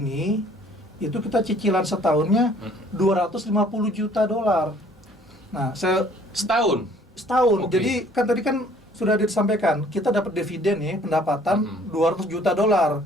itu kita cicilan setahunnya 250 juta dolar. Nah, Setahun? setahun. Oke. Jadi kan tadi kan sudah disampaikan, kita dapat dividen nih, pendapatan 200 juta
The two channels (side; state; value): both; normal; correlation 0.57